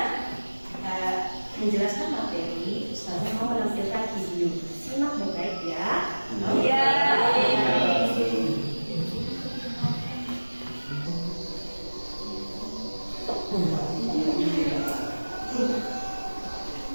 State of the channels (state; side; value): inverted; both; correlation -1.00